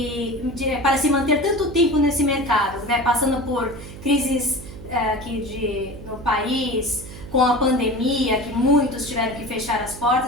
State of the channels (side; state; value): right; noise; hum, 14 dB below the sound